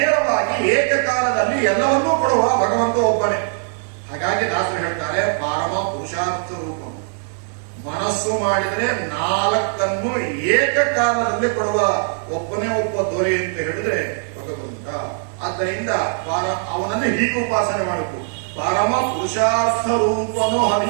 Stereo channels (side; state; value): left; silent; 60 dB below the other